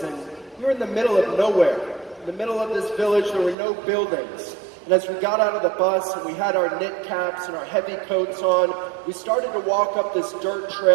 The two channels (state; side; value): drops out; left; at 3.6 s